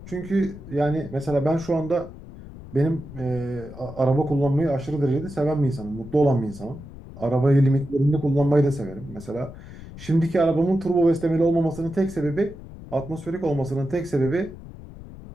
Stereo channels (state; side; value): noise; left; rumble, 15 dB below the sound